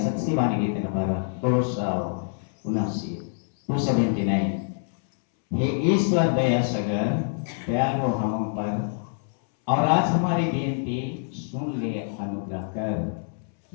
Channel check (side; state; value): right; silent; 61 dB below the other